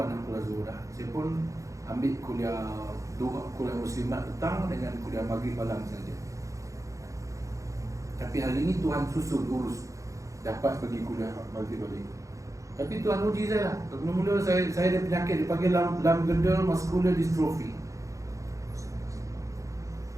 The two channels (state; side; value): late; left; 0.15 ms